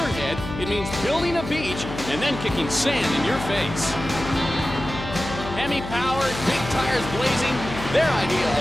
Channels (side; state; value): left; noise; hum, 9 dB below the sound